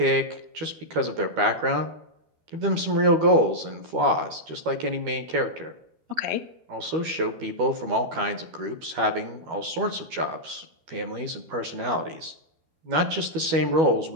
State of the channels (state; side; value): late; left; 12 ms